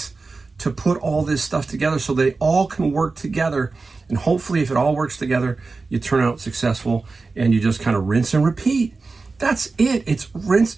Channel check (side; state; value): left; quieter; 4.0 dB